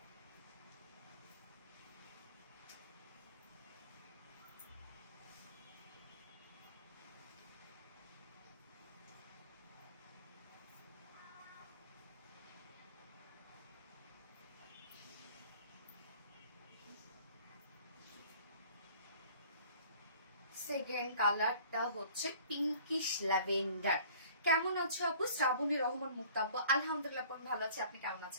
সেকেন্ড কালারটা হচ্ছে পিঙ্কিশ ল্যাভেন্ডার। কেমন আছো আপু? শ্রাবণী রহমান মুক্তা আপু, আলহামদুলিল্লাহ ভালো আছি। আপনি কেমন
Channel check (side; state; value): both; inverted; correlation -0.51